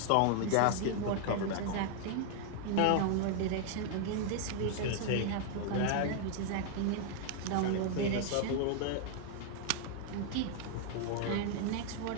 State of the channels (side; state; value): both; different; correlation 0.00